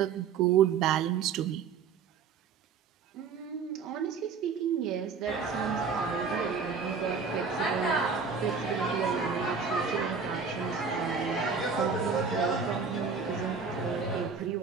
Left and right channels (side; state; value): left; quieter; 5.7 dB